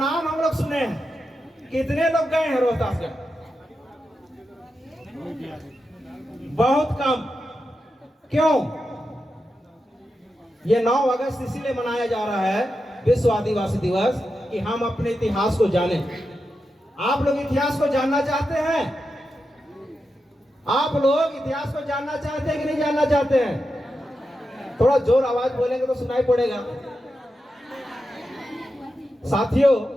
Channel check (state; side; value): normal; both; correlation 0.88